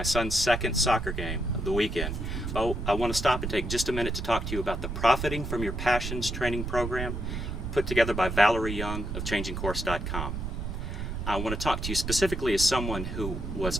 son's second soccer game of the weekend. Oh, I want to stop and take just a minute to talk to you about the Profiting from Your Passions training program put together by Valerie Young of changingcourse.com. I want to talk to you specifically as someone who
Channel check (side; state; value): right; noise; rumble, 4 dB below the sound